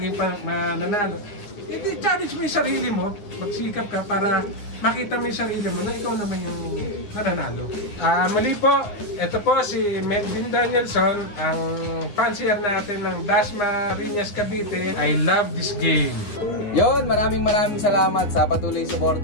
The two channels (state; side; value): late; right; 9.8 ms